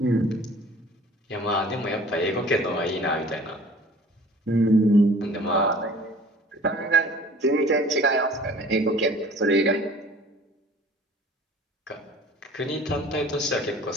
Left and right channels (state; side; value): normal; both; correlation 0.48